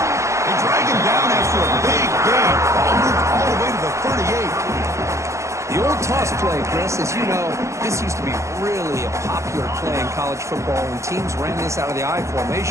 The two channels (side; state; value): left; late; 0.14 ms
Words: They drag him down after a big gain. Ball moved all the way to the 38. The old toss play, Chris, as you know, this used to be really a popular play in college football when teams ran this out of the I